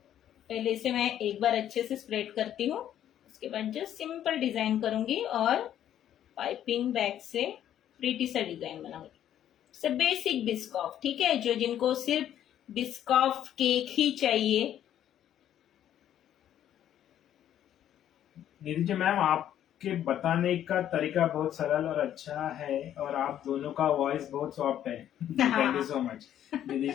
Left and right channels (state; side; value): quieter; right; 10.9 dB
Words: पहले इसे मैं एक बार अच्छे से स्प्रेड करती हूँ, उसके बाद जस्ट सिंपल डिजाइन करूंगी और पाइपिंग बैग से प्रीटी सा डिजाइन बनाऊंगी। सब बेसिक बिस्कॉफ, ठीक है, जो जिनको सिर्फ बिस्कॉफ केक ही चाहिए। निधि जी मैम आपके बताने का तरीका बहुत सरल और अच्छा है और आप दोनों का वॉइस बहुत सॉफ्ट है। Thank you so much Nidhi